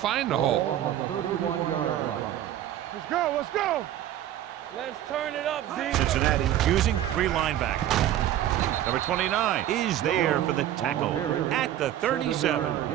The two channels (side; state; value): left; quieter; 12.1 dB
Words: the hole. On the 31-yard line. Let's go. Let's go. Let's turn it up, Z. Cincinnati using 3 linebackers. Number 29 is there for the tackle at the